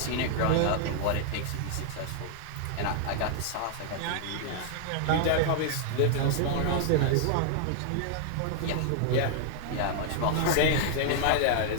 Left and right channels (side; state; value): both; different; correlation 0.00